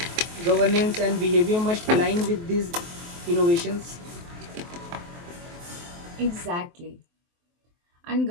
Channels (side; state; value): left; late; 23 ms